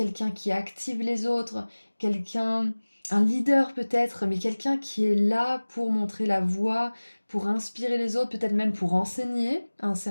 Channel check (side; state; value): both; inverted; correlation -1.00